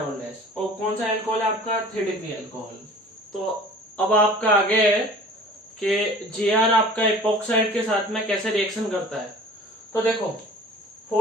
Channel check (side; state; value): both; normal; correlation 0.45